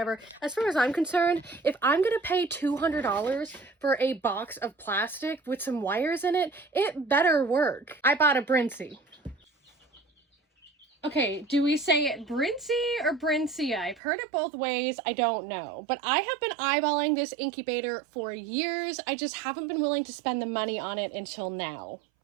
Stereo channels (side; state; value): left; drops out; at 14.0 s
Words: As far as I'm concerned, if I'm gonna pay $200 for a box of plastic with some wires in it, it better work. I bought a Brinsea. Okay, do we say it Brinsea or Brinsea? I've heard it both ways. I don't know. But I have been eyeballing this incubator for years. I just haven't been willing to spend the money on it until now.